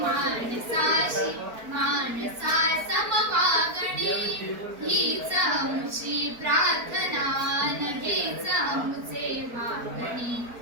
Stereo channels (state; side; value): late; left; 4.4 ms